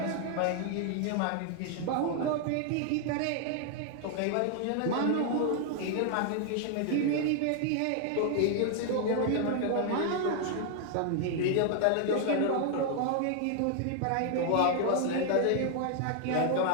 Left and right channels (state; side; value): different; both; correlation 0.00